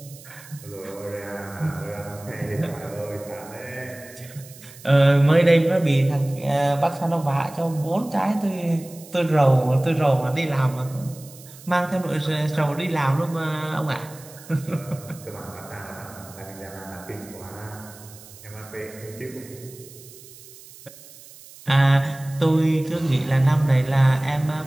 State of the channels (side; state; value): right; noise; hiss, 20 dB below the sound